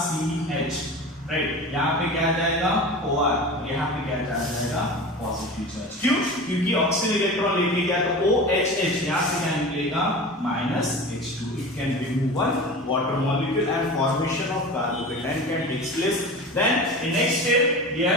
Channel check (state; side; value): normal; both; correlation 0.33